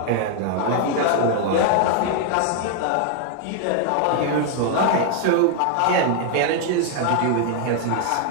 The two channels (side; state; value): both; different; correlation 0.00